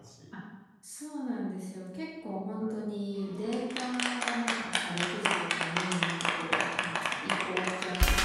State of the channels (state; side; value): identical; both; correlation 1.00